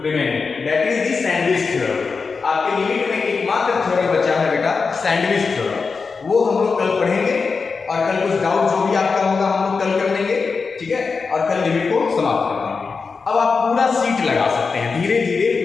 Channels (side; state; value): right; quieter; 4.8 dB